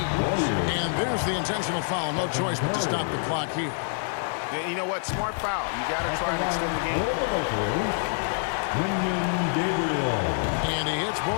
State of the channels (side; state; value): right; silent; 61 dB below the other